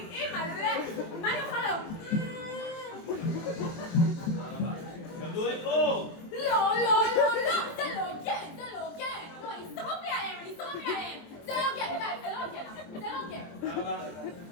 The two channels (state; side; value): late; right; 23 ms